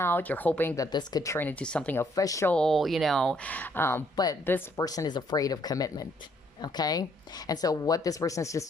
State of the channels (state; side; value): normal; both; correlation 0.68